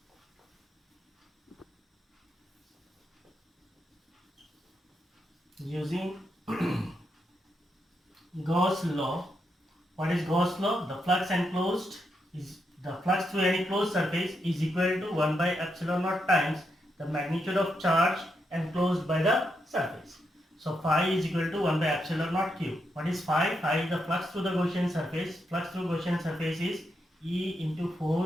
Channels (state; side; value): normal; both; correlation 0.82